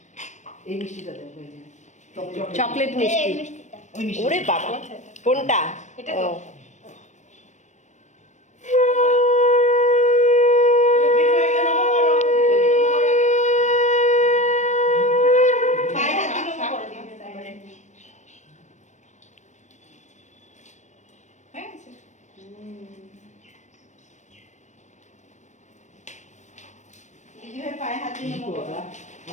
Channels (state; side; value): late; right; 0.34 ms